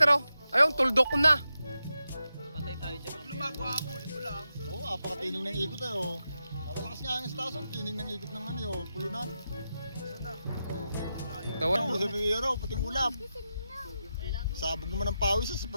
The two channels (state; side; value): inverted; both; correlation -0.88